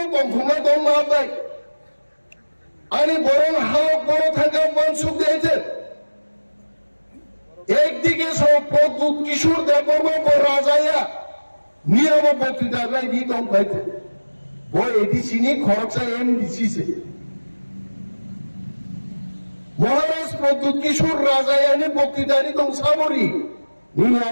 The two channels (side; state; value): both; inverted; correlation -1.00